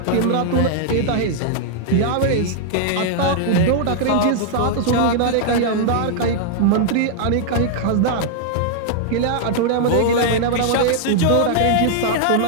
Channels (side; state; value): both; different; correlation -0.01